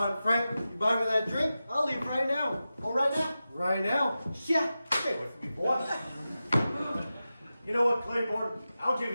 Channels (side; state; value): both; inverted; correlation -0.93